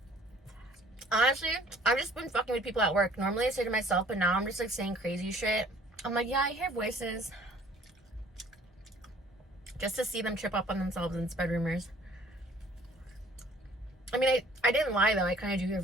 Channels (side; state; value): both; normal; correlation 0.55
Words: Honestly, I've just been fucking with people at work. Normally I say to myself, but now I'm just like saying crazy shit. I'm like, yeah, I hear voices. Just to see them trip up on themselves and spread rumors. I mean, I didn't lie though. I kind of do hear